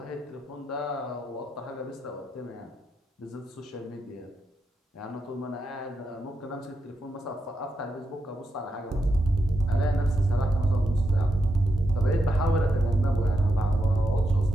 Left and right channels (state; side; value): normal; both; correlation 0.84